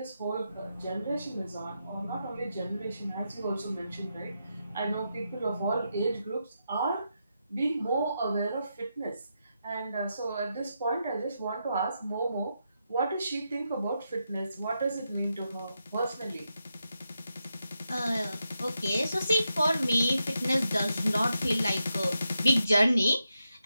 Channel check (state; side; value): inverted; both; correlation -0.85